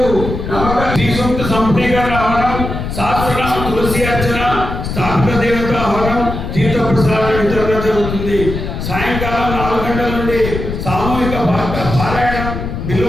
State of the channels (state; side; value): noise; left; rumble, 5 dB below the sound